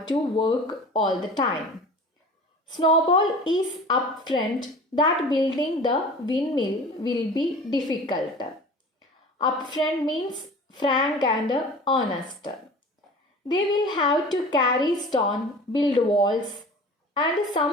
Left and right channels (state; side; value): normal; both; correlation 0.40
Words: to work all the time. Snowball is upfront that building the windmill will be difficult. Upfront means frank and honest. They will have to carry stone, build walls, and